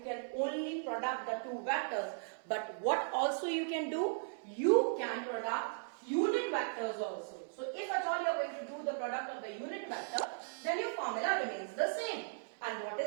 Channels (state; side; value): silent; left; digital silence